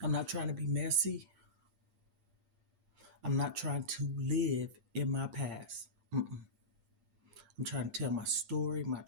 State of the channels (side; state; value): left; late; 8.7 ms